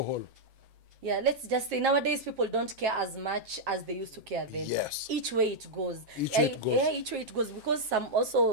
Yeah, let's just say nowadays people don't care as much as they used to care then. Yes. Each way it goes. Each way it goes. Yeah, each way it goes, because some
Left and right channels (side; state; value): left; late; 7.5 ms